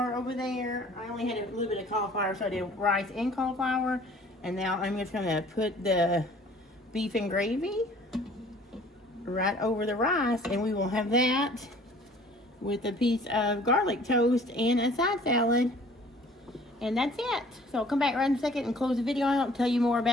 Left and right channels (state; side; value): normal; both; correlation 0.52